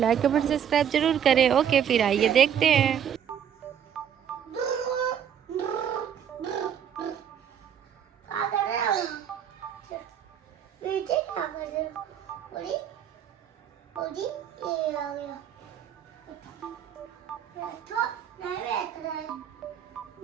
कमेंट सब्सक्राइब जरूर करें। ओके, फिर आइए देखते हैं।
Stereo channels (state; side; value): quieter; left; 8.9 dB